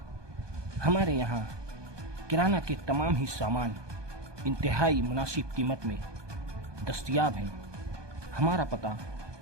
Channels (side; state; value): left; late; 1.2 ms